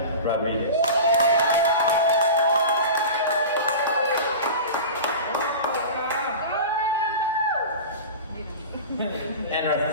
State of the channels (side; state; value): both; inverted; correlation -0.32